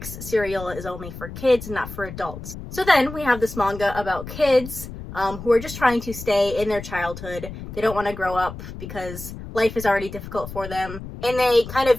cereal is only for kids and not for adults. So then we have this manga about kids who are just trying to stay in their childhood. They don't want to grow up because life is already difficult for them. And they kind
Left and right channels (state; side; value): noise; left; rumble, 11 dB below the sound